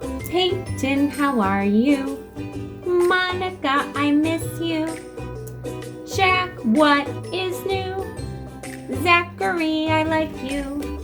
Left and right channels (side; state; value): both; identical; correlation 1.00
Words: Peyton, how are you? Monica, I miss you. Jack, what is new? Zachary, I like you.